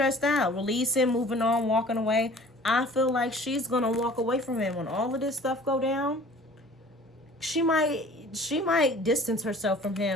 out. Release him, moving on, walking away. I feel like she's gonna walk away from him when all of this stuff go down. She might distance herself from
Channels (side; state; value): both; normal; correlation 0.48